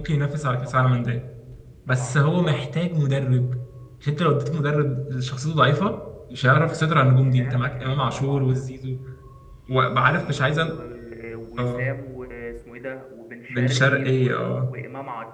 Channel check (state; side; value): identical; both; correlation 1.00